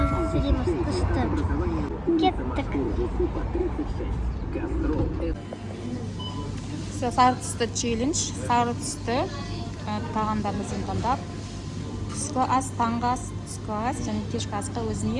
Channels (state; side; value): identical; both; correlation 1.00